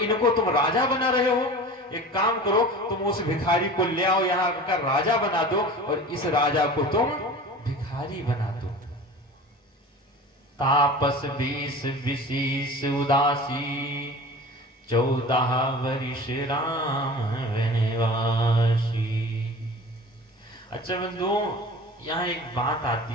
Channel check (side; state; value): both; normal; correlation 0.38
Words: तुम राजा बना रहे हो। एक काम करो, तुम उस भिखारी को ले आओ, यहाँ का राजा बना दो और इस राजा को तुम भिखारी बना दो। तापस 20 विशीष उदासी, 14 वर्ष राम वनवासी। अच्छा बंधु, यहाँ एक बात